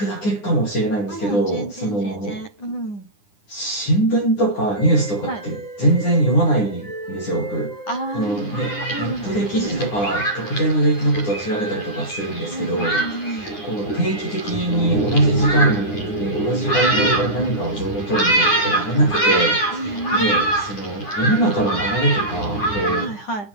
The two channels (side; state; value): right; late; 9.8 ms